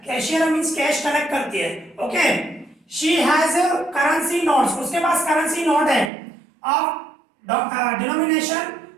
कैशियर मींस कैश कलेक्ट करती है। Okay, she has currency notes. उसके पास करेंसी नोट है of denomination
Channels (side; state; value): left; drops out; at 6.1 s